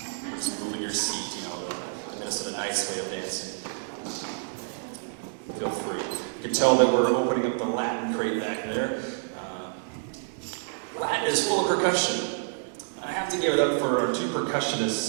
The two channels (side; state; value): left; silent; digital silence